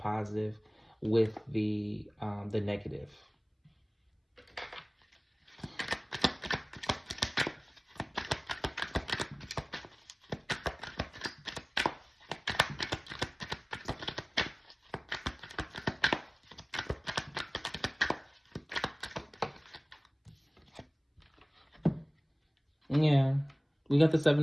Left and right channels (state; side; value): identical; both; correlation 1.00